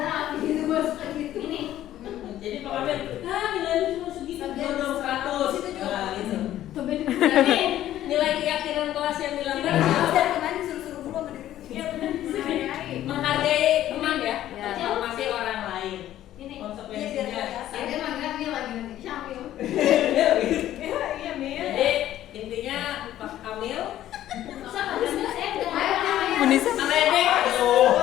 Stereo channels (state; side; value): quieter; right; 12.8 dB